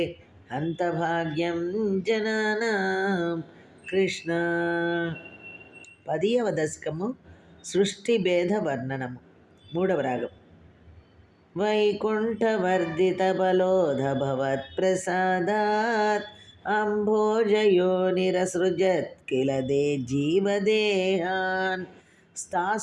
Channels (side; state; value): both; identical; correlation 1.00